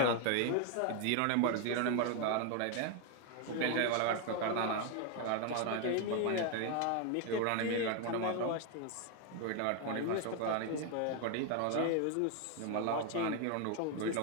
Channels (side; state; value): both; different; correlation 0.01